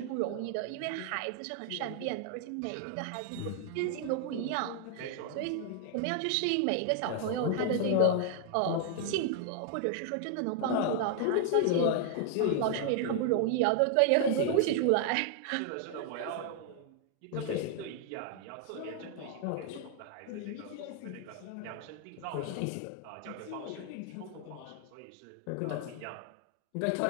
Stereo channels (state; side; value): different; both; correlation 0.00